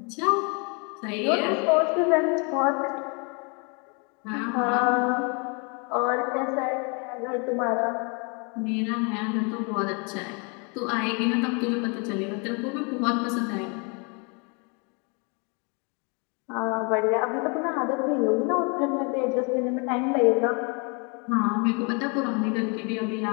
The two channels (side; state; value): right; quieter; 34.0 dB